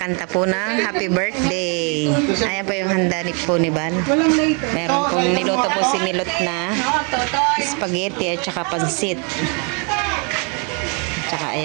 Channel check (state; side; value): quieter; left; 35.7 dB